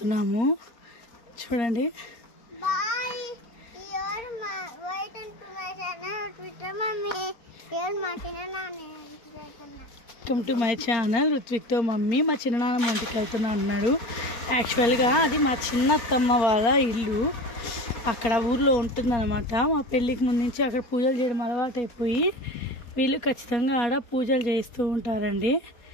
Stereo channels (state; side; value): late; right; 4.3 ms